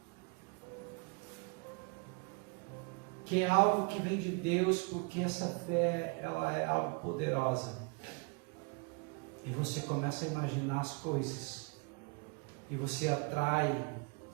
que é algo que vem de Deus, porque essa fé, ela é algo poderosa. E você começa a imaginar as coisas. E você atrai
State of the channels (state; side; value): quieter; left; 32.9 dB